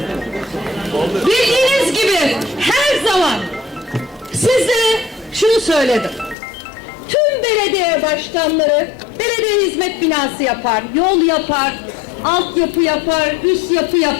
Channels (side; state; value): right; drops out; at 6.4 s